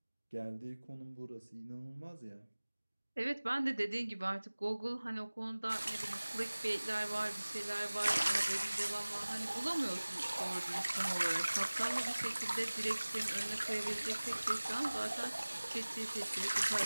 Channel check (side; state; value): both; inverted; correlation -1.00